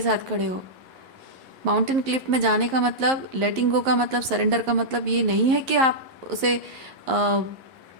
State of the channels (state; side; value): late; left; 11 ms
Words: साथ खड़े हो। माउंटेन क्लिफ में जाने का मतलब, लेटिंग गो का मतलब, सरेंडर का मतलब ये नहीं है कि आप उसे